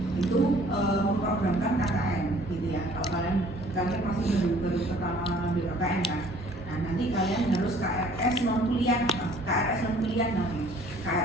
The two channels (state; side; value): normal; both; correlation 0.55